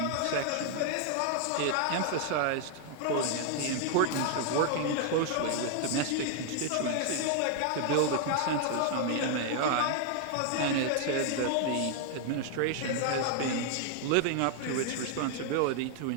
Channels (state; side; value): different; both; correlation 0.00